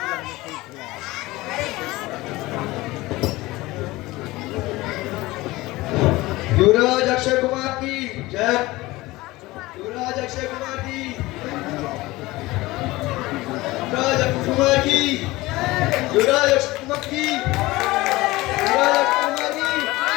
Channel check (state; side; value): quieter; right; 19.7 dB